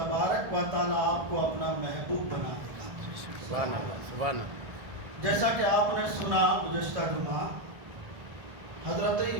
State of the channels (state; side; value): late; left; 1.5 ms